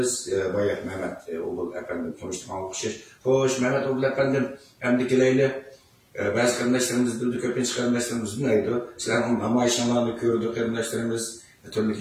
Bayah Mehmet Oğul Efendim konuştuğum okşaş. Hoş Mehmet Oğul Efendim hem dikileyle bazı karındaşlarımız bildi, köpünç karındaşlarımız neydi? Sizlerin namayışanlarını gördü karındaşlarımız, türlü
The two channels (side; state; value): both; identical; correlation 1.00